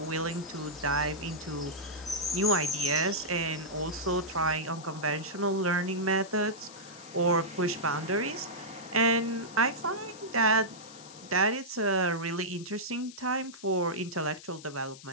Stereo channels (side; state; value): left; noise; hiss, 17 dB below the sound